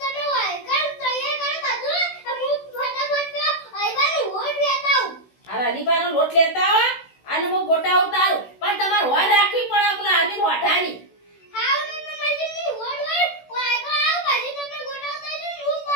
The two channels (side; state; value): right; late; 16 ms